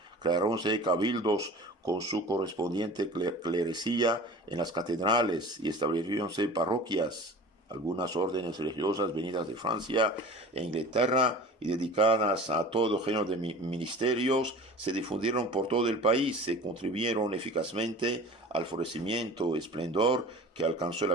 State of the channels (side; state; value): both; normal; correlation 0.40